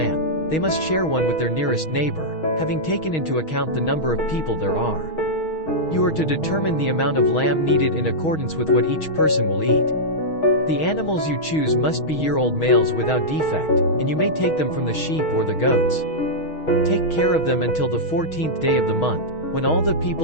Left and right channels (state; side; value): late; right; 6.3 ms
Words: they must share one with their nearest neighbor, having taken into account the number of people there are. You are to determine the amount of lamb needed in accordance with what each person will eat. The animals you choose must be year-old males without defect, and you may take them from the sheep or the goats. Take care of them until the 14th day of the month, when all the